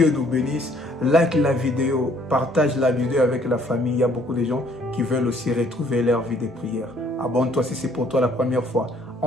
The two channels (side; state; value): both; normal; correlation 0.62